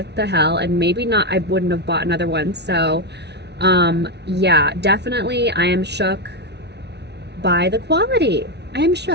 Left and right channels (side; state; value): left; late; 0.50 ms